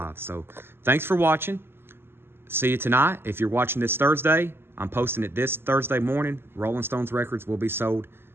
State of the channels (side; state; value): left; late; 0.11 ms